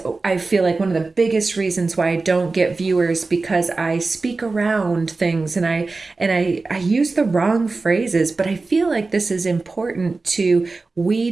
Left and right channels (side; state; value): left; quieter; 3.7 dB